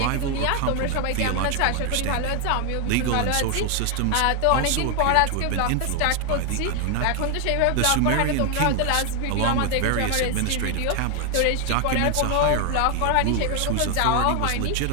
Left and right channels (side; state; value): both; different; correlation 0.00